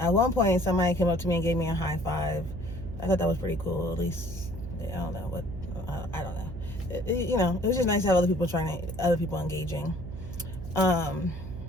one point somebody came up to me and gave me a high five. I thought that was pretty cool. At least I don't know what I don't know. You know, it was just nice to have other people engaging,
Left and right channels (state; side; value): noise; right; hum, 10 dB below the sound